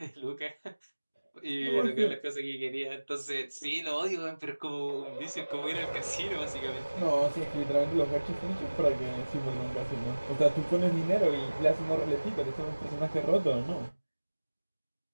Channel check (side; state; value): both; inverted; correlation -1.00